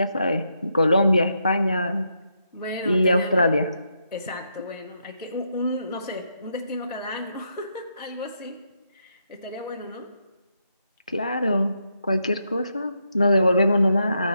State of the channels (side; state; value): both; inverted; correlation -0.80